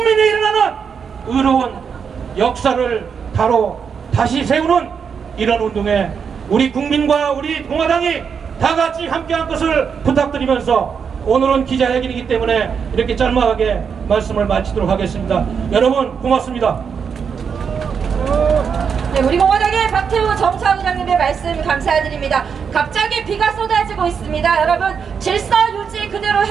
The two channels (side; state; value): left; quieter; 6.6 dB